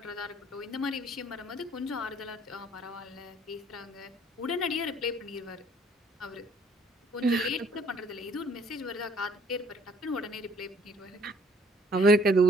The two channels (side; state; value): both; normal; correlation 0.62